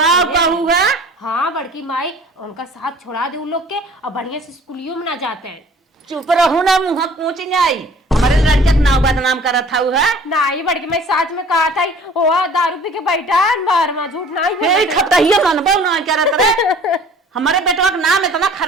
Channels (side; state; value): both; normal; correlation 0.49